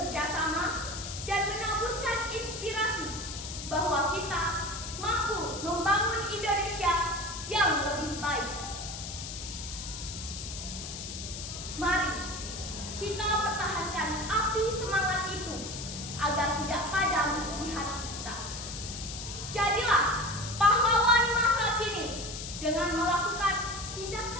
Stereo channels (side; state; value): left; noise; hiss, 8 dB below the sound